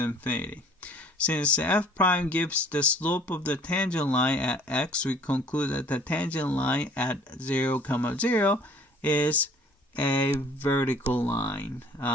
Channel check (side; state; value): both; normal; correlation 0.53